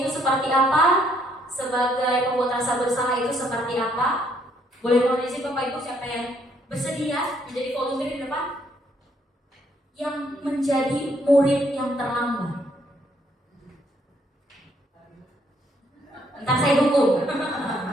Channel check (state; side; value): normal; both; correlation 0.69